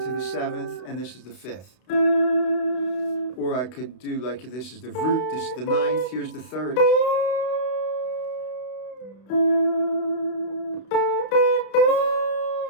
the 7th, and this is the 5th. Or I could do like this is the root, this is the 9th, here's the 3rd.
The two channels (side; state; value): right; late; 32 ms